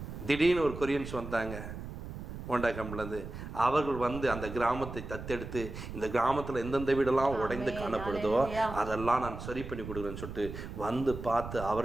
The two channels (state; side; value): noise; right; rumble, 9 dB below the sound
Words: திடீர்னு ஒரு கொரியன்ஸ் வந்தாங்க ஹோண்டா கம்பெனிலேருந்து. அவர்கள் வந்து அந்த கிராமத்தை தத்தெடுத்து, இந்த கிராமத்தில் எந்தெந்த வீடெல்லாம் உடைந்து காணப்படுதோ அதெல்லாம் நான் சரி பண்ணி கொடுக்குறேன்னு சொல்லிட்டு வந்து பார்த்து,